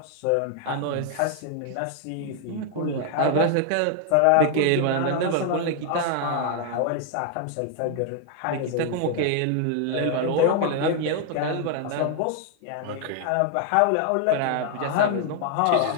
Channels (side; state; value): both; different; correlation 0.00